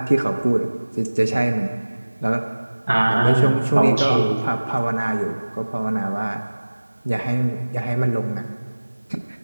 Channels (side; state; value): both; inverted; correlation -1.00